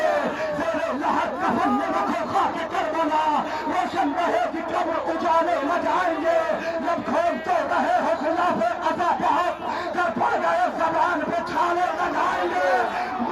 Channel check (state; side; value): identical; both; correlation 1.00